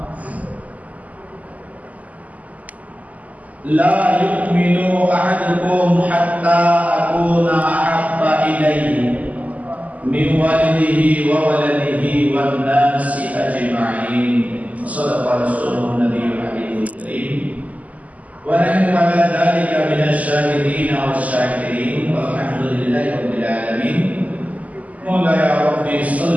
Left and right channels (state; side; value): late; left; 0.074 ms